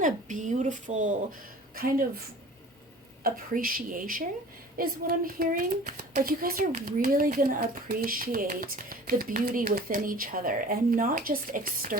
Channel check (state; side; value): normal; both; correlation 0.44